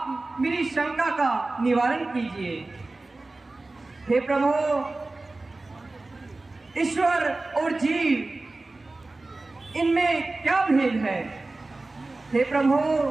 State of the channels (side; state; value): left; quieter; 3.2 dB